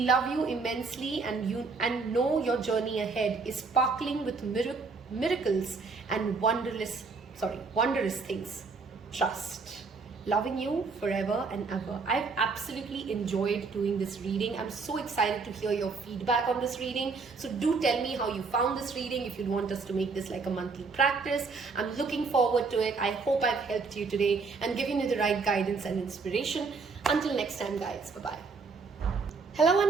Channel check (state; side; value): quieter; left; 4.5 dB